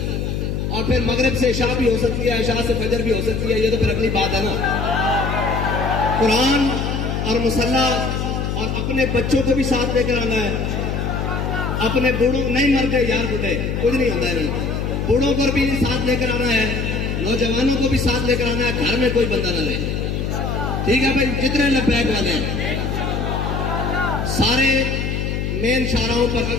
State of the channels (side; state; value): left; noise; hum, 1 dB below the sound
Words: और फिर मगरिब से इशा भी हो सकती है, इशा से फजर भी हो सकती है, ये तो फिर अगली बात है ना। कुरान और मुसल्ला और अपने बच्चों को भी साथ लेकर आना है। अपने बूढ़ों नहीं मर गए यार, बूढ़े कुछ नहीं होता है, बूढ़ों को भी साथ लेकर आना है, नौजवानों को भी साथ लेकर आना है। घर में कोई बंदा ना ले। ठीक है भाई, जितने लब्बैक वाले हैं सारे मेन शाहराहों पर,